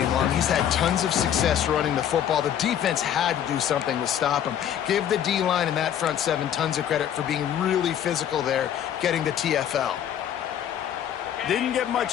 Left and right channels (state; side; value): quieter; right; 9.9 dB